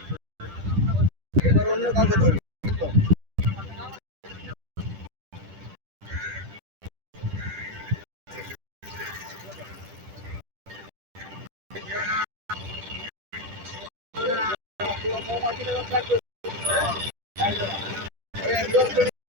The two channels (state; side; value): late; left; 10 ms